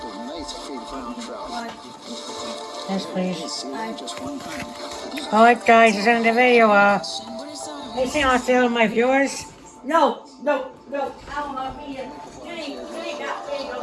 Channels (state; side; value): identical; both; correlation 1.00